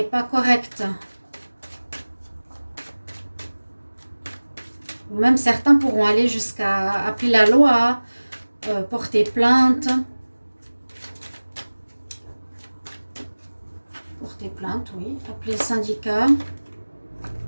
pas correct. Ou même certains pourront aller jusqu'à appeler la loi, porter plainte. Porter plainte, oui. Appeler le syndicat.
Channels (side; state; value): both; inverted; correlation -1.00